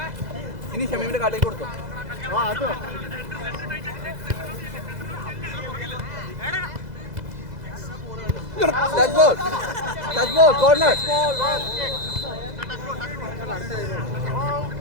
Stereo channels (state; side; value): late; left; 2.0 ms